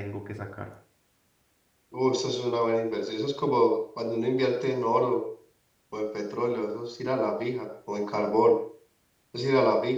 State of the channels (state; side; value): identical; both; correlation 1.00